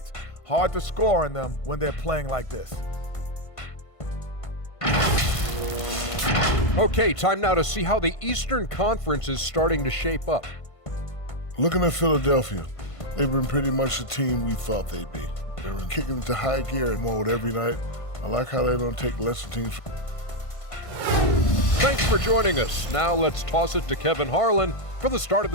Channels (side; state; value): right; late; 1.5 ms